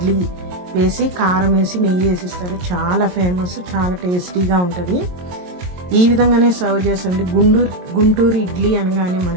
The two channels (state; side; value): late; left; 22 ms